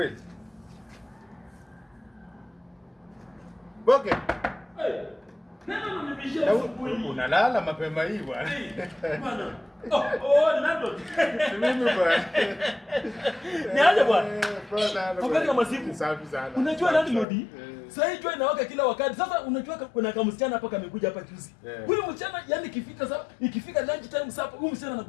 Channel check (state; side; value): drops out; right; at 17.2 s